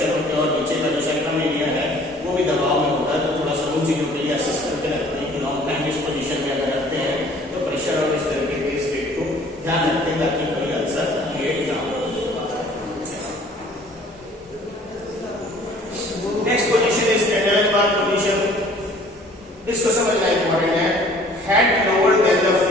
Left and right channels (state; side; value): normal; both; correlation 0.53